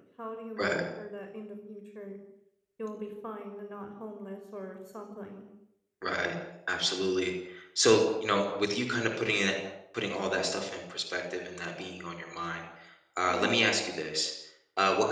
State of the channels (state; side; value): identical; both; correlation 1.00